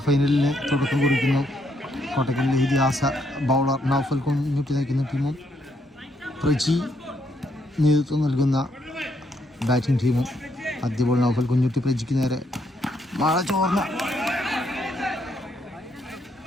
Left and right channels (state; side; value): normal; both; correlation 0.74